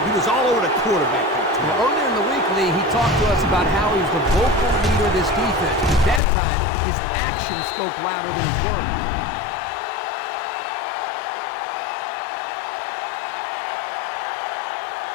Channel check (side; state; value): right; drops out; at 6.2 s